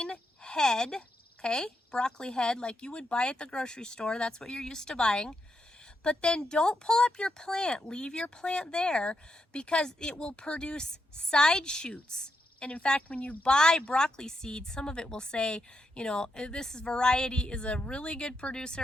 head, okay, broccoli head like you would buy at the grocery store. That's what you're used to buying. But then don't pull up your plant, leave your plant there, because it will produce side shoots. And in fact, when you buy broccoli seeds, some of it will say, you know, this variety is a really good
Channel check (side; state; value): both; normal; correlation 0.82